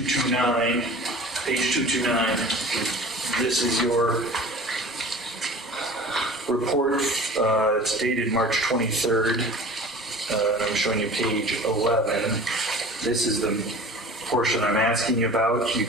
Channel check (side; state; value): both; normal; correlation 0.41